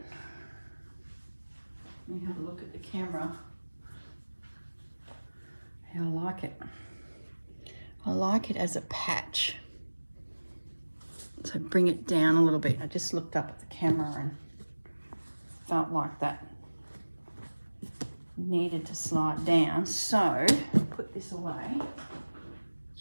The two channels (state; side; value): inverted; both; correlation -1.00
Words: Let me have a look at the camera. I like it. I like it as a patch. So bring it down a little bit. I just looked up at the camera and felt like that needed to slide down. So put this away.